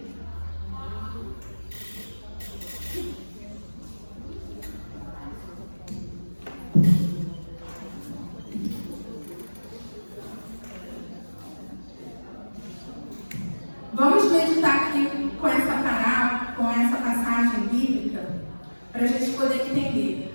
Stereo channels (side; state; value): both; inverted; correlation -1.00